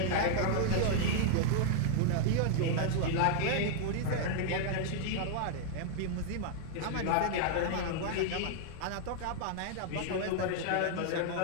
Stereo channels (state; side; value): different; both; correlation -0.01